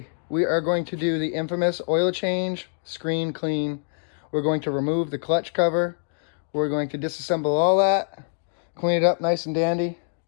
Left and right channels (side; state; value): right; silent; digital silence